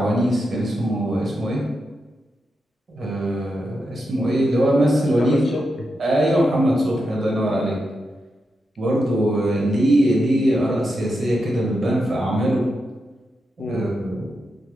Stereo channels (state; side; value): normal; both; correlation 0.86